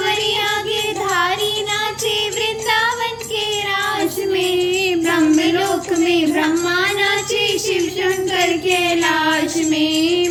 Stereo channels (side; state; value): both; identical; correlation 1.00